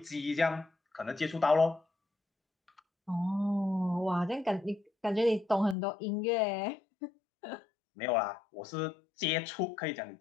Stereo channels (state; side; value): drops out; right; at 5.8 s